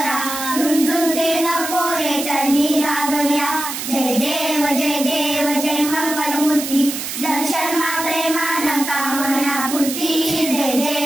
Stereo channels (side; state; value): right; noise; hiss, 6 dB below the sound